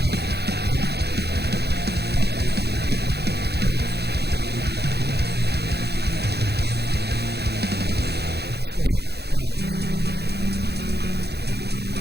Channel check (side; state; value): left; late; 0.48 ms